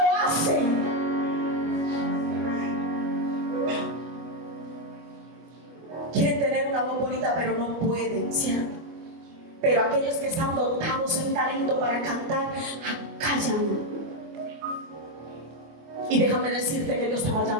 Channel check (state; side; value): late; left; 24 ms